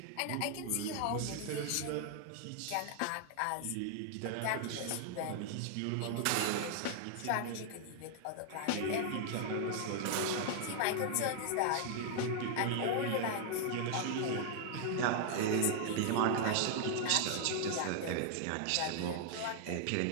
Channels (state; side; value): different; both; correlation 0.00